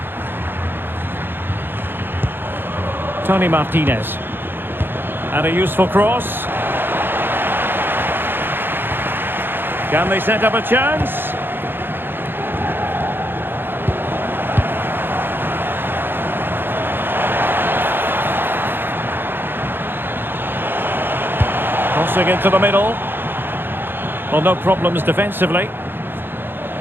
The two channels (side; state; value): left; late; 0.10 ms